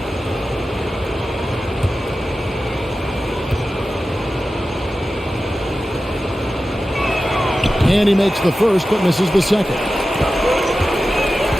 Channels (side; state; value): both; normal; correlation 0.93